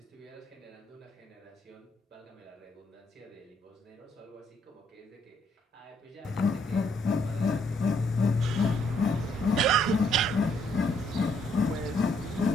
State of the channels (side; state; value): both; normal; correlation 0.70